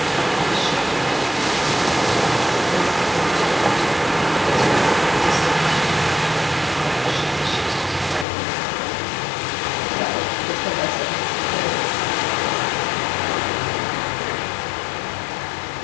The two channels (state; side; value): drops out; right; at 8.2 s